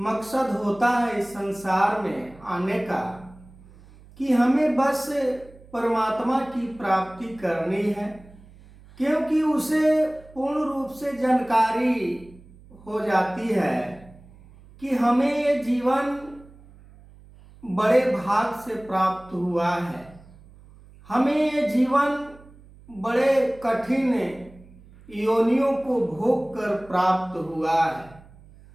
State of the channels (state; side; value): noise; right; hum, 23 dB below the sound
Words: होता है इस संसार में आने का, कि हमें बस परमात्मा की प्राप्ति करनी है, क्योंकि उसे पूर्ण रूप से जानकारी हो जाती है कि हमें ये जीवन बड़े भाग से प्राप्त हुआ है, हमें ये जीवन बड़े कठिन योनियों को भोग कर प्राप्त हुआ है।